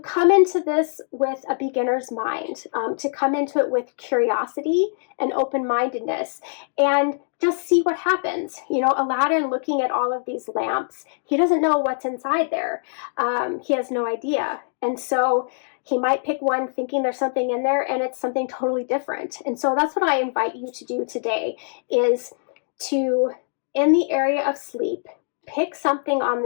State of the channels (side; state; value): right; silent; digital silence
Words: into this with a beginner's mind, to come into it with curiosity and open-mindedness, and just see what happens. Aladdin looking at all of these lamps, he doesn't know what's inside there. He has no idea. And so he might pick one thinking there's something in there, and it's something totally different. And so that's what I invite you to do today, is to, in the area of sleep, pick something on